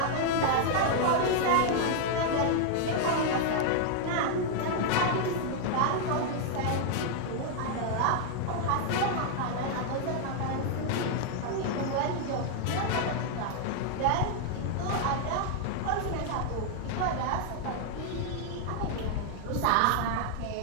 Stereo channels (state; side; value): different; both; correlation 0.00